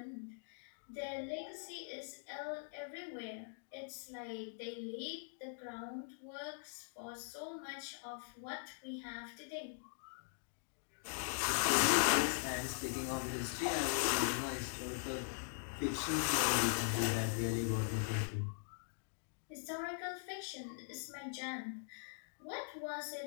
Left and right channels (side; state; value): right; silent; digital silence